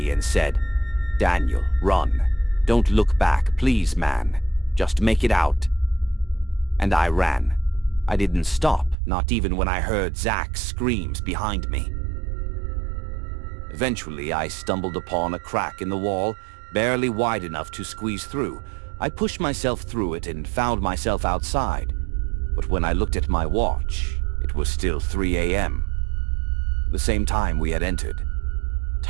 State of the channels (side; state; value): left; drops out; at 9.0 s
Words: and said, "Daniel, run. Don't look back, please, man. Just make it out." And I ran. I didn't stop, not even when I heard Zach's screams behind me. Eventually, I stumbled upon a crack in the wall, barely wide enough to squeeze through. I pushed myself through it and found myself outside. But when I looked at my watch, it was still 3 a.m. The same time we had entered.